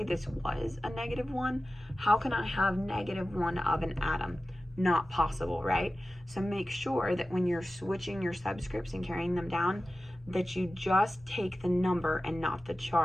this was a -1. How can I have -1 of an atom? Not possible, right? So make sure that when you're switching your subscripts and carrying them down, that you just take the number and not the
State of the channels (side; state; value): both; normal; correlation 0.95